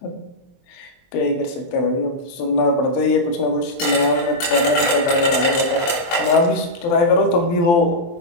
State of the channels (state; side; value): late; right; 23 ms